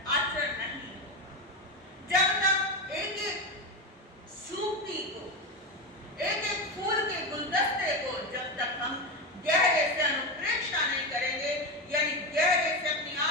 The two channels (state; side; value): normal; both; correlation 0.17